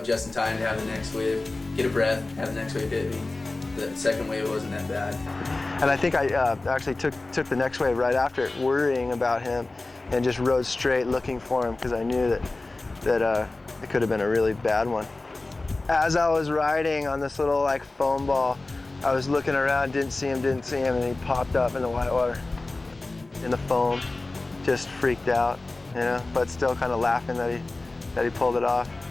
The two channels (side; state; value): right; quieter; 3.1 dB